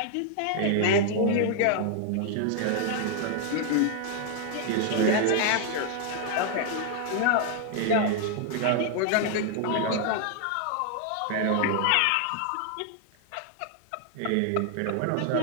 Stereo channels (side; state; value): both; different; correlation 0.00